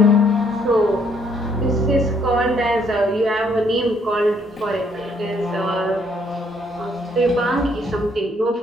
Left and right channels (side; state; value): both; normal; correlation 0.67